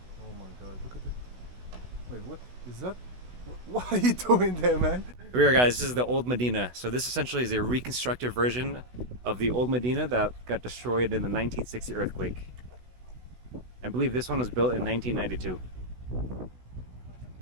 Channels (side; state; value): left; late; 16 ms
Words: Oh my god, look at it. Wait, what is that? What are you doing there, man? Here we are, guys. This is the old Medina. So this essentially is a reconstructed version of the old Medina that got destroyed in the 1960 earthquake. I believe this one was built in 1992.